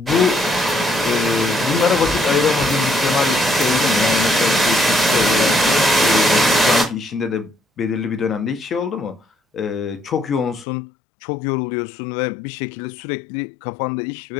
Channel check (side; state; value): right; drops out; at 10.7 s